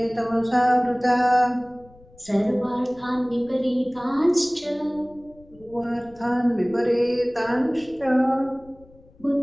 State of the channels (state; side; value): noise; left; rumble, 26 dB below the sound